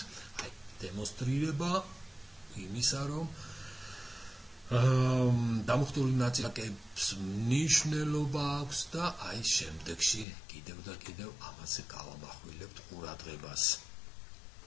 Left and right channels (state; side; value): drops out; right; at 10.2 s